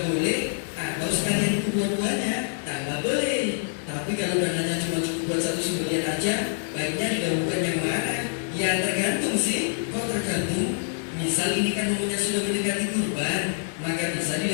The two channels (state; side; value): silent; right; digital silence